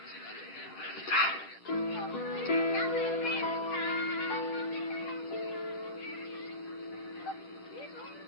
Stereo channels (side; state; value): right; late; 10 ms